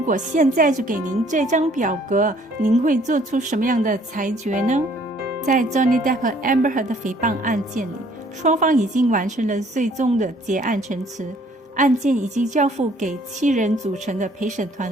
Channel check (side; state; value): both; normal; correlation 0.60